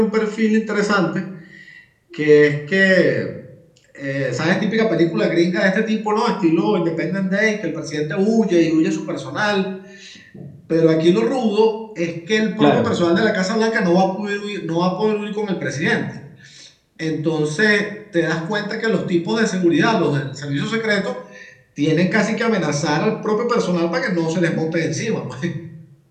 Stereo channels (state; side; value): identical; both; correlation 1.00